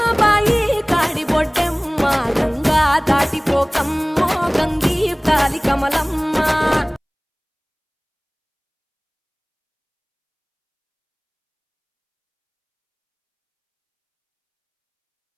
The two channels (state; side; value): identical; both; correlation 1.00